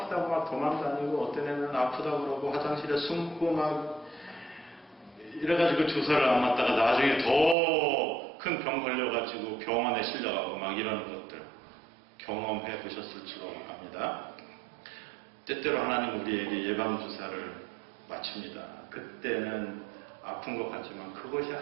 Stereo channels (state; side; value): drops out; left; at 7.6 s